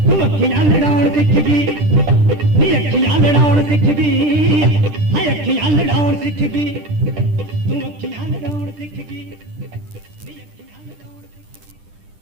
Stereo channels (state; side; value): late; left; 10 ms